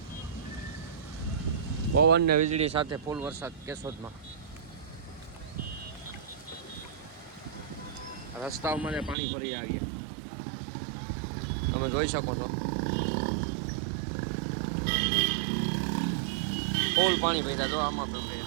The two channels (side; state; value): left; drops out; at 9.2 s